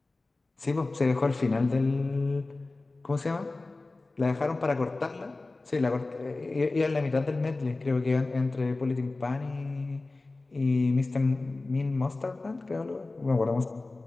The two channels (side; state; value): right; quieter; 3.2 dB